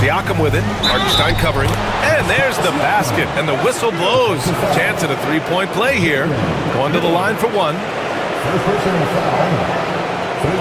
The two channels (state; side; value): identical; both; correlation 1.00